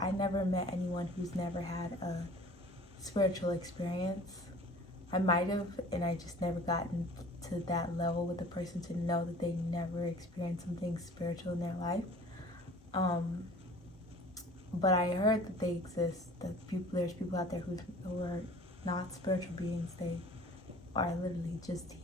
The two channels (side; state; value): both; normal; correlation 0.46